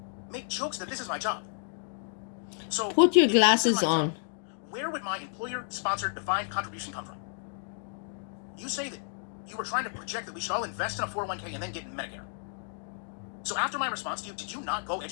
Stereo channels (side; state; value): right; silent; digital silence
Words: make jokes that this is my job. So put your glasses on. Where would my employer-sponsored defined contribution come from? You say that you were trying to project that we should all invest in a 401k and then get Medicare. So after my response to you, did you not go